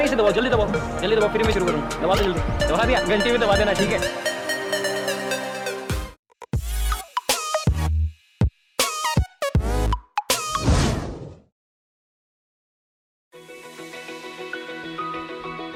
से दबाओ, जल्दी दबाओ, जल्दी दबाओ, फिर मैं शुरू करूँ। दबा दो जल्दी, दबा दिया, घंटी भी दबा देना, ठीक है।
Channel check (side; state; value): both; identical; correlation 1.00